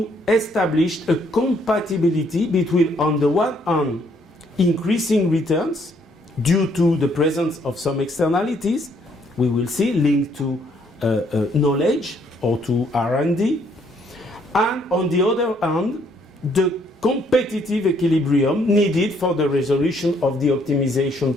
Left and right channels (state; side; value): normal; both; correlation 0.68